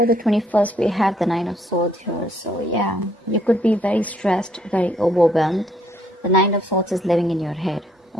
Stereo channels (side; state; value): both; normal; correlation 0.68